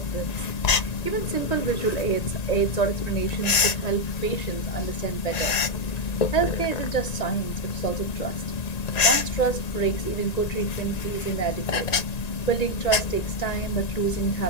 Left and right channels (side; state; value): right; late; 1.9 ms